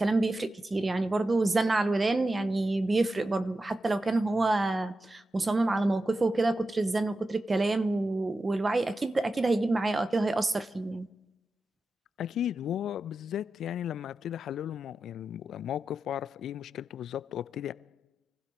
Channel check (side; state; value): both; normal; correlation 0.91